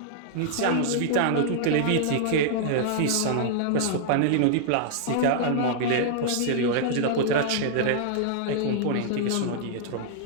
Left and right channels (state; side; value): different; both; correlation -0.01